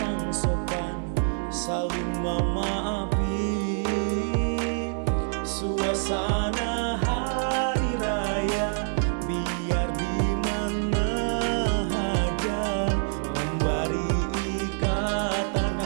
sopan, saling memaafi. Suasana hari raya biar di mana aja, memberi ikatan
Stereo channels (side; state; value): left; silent; 61 dB below the other